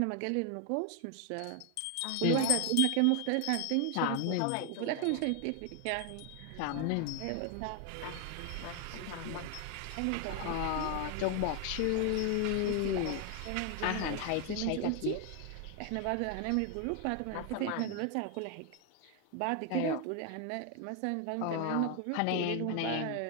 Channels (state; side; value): different; both; correlation 0.00